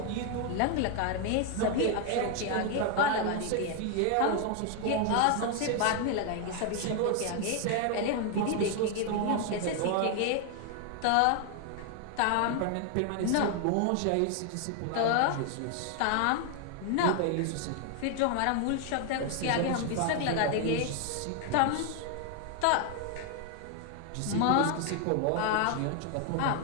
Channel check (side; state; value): both; different; correlation 0.00